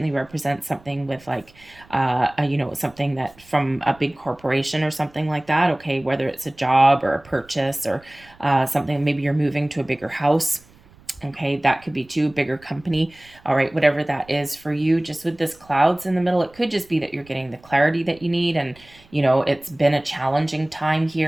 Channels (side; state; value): right; noise; rumble, 27 dB below the sound